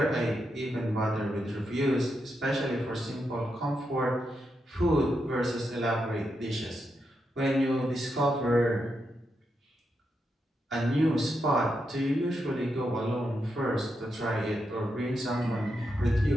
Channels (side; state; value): both; normal; correlation 0.84